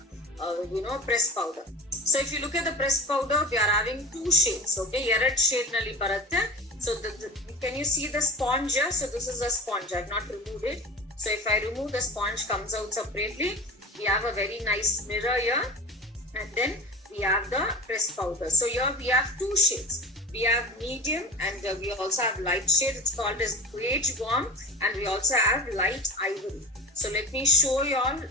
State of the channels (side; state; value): both; normal; correlation 0.33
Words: press powder. So if you look at the press powder, we are having two shades. Okay, ಎರಡ್ shade ನಲ್ಲಿ ಬರುತ್ತೆ. So can you see the sponge here? So this is a sponge. I have not removed it. So if I remove, the sponge comes out separately. We have a very nice mirror here, and then we have the press powder. So here we have two shades. We have medium and we also have light shade. It's called as beige warm, and we also have light ivory. So let me show you all